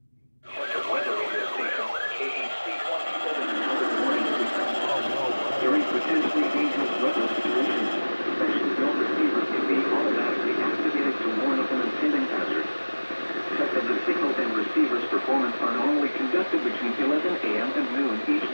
During potentially dangerous weather situations, special bell receivers can be automatically activated to warn of an impending hazard. Check that the signal and receiver's performance are not tested between 11 a.m. and noon each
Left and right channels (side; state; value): both; inverted; correlation -1.00